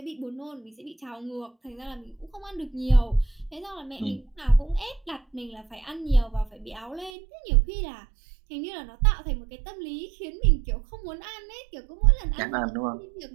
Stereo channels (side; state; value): left; drops out; at 7.1 s